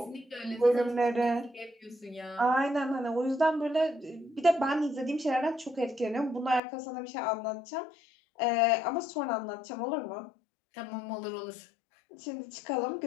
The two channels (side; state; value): right; drops out; at 6.6 s